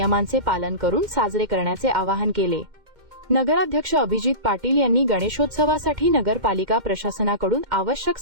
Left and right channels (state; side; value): late; left; 2.1 ms